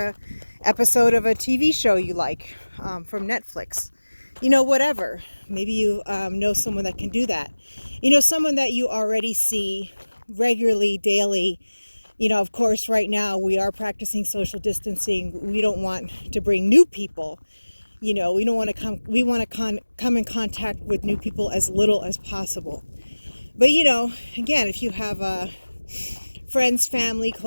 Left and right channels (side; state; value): both; inverted; correlation -1.00